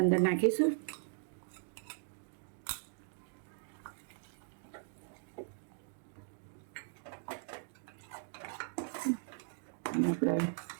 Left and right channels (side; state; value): left; silent; digital silence